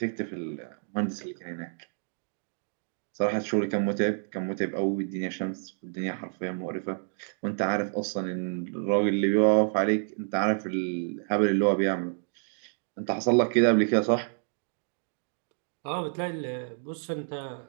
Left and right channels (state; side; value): silent; left; digital silence